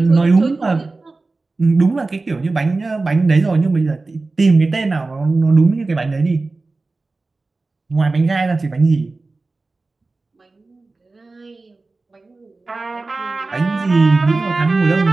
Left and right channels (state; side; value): quieter; left; 3.5 dB